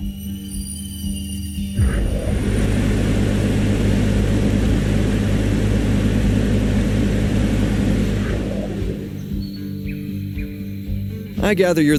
I gather you're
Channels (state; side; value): identical; both; correlation 1.00